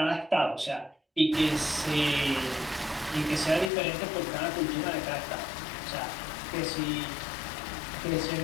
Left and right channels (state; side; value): drops out; right; at 3.7 s